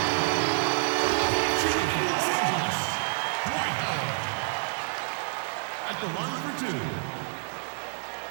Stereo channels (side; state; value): left; silent; 59 dB below the other